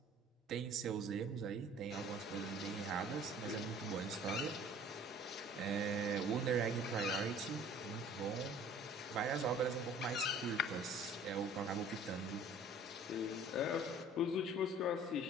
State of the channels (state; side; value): normal; both; correlation 0.50